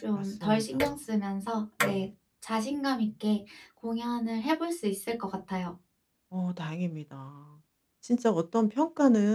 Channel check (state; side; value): identical; both; correlation 1.00